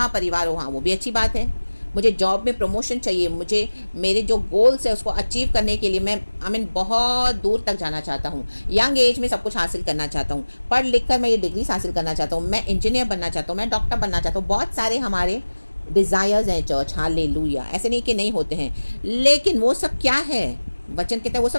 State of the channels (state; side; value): inverted; both; correlation -1.00